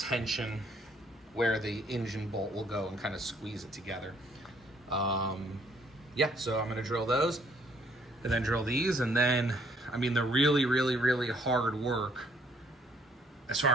where the engine bolt will go and kind of squeeze it together. Yeah, so I'm going to drill those. and then drill these. And then, I mean, the really hard work as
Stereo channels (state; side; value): normal; both; correlation 0.65